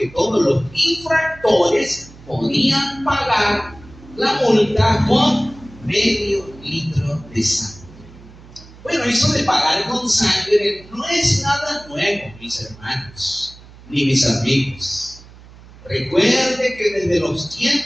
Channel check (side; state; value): right; noise; hum, 21 dB below the sound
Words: todos los infractores podían pagar la multa con medio litro de sangre. Bueno, eso de pagar con sangre no es nada nuevo, mis hermanos, ni mis amigos. Recuerde que desde los